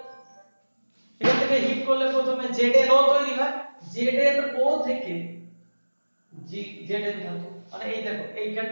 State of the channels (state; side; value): inverted; both; correlation -1.00